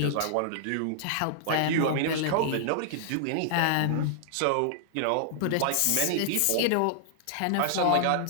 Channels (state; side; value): different; both; correlation -0.01